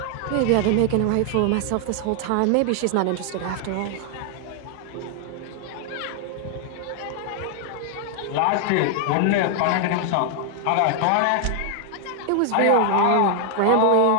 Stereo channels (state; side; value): different; both; correlation 0.00